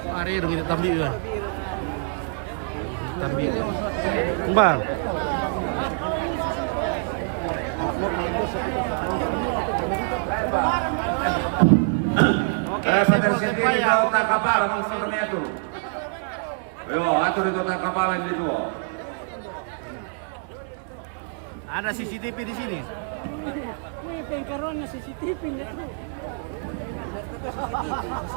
Are dong itu tabiu ya. Tabiu. Bang. Oke, saya mau ya. Tak kapal, kami itu. Yo, atur itu tak kapalan itu. Ada CCTV di sini. May pengkaroon na CCTV nito.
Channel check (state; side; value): silent; left; 58 dB below the other